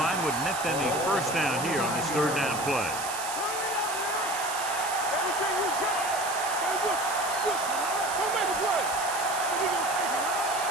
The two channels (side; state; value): right; noise; hiss, 7 dB below the sound